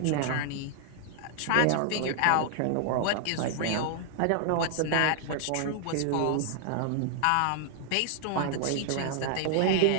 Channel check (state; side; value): different; both; correlation -0.01